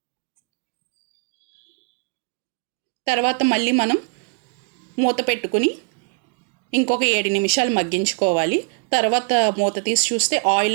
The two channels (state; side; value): quieter; left; 37.1 dB